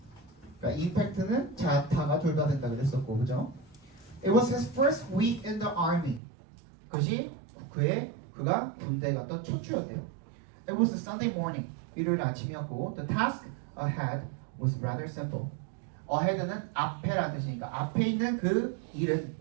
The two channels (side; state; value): left; drops out; at 6.2 s